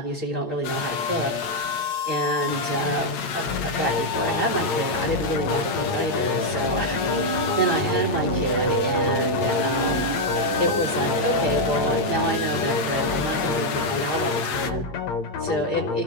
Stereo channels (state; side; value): late; right; 8.7 ms